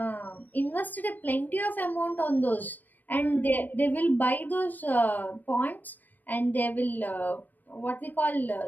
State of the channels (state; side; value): late; right; 0.087 ms